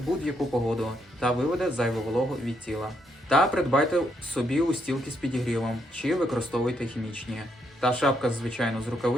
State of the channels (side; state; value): both; normal; correlation 0.76